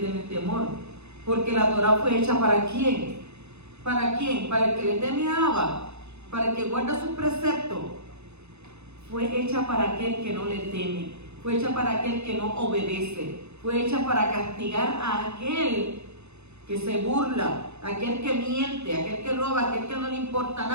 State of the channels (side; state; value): left; late; 0.81 ms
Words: temor. Porque la Torah fue hecha ¿para quién? ¿Para quién? Para el que le teme a Abba, para el que guarda sus preceptos. Fue hecha para aquel que no le teme, fue hecha para aquel que no obedece, fue hecha para castigar a aquel que se burla, aquel que miente, aquel que roba, aquel que no le importa